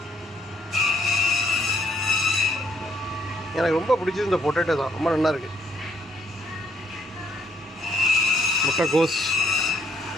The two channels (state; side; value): normal; both; correlation 0.68